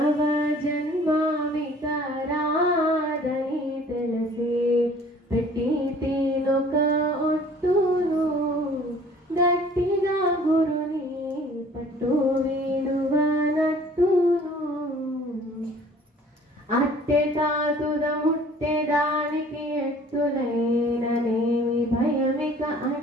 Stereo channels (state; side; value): normal; both; correlation 0.52